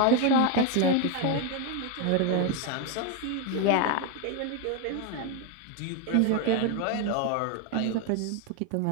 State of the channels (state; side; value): different; both; correlation 0.01